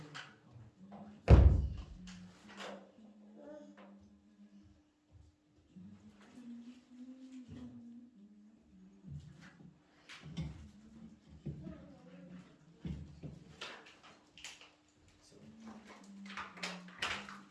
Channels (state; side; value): identical; both; correlation 1.00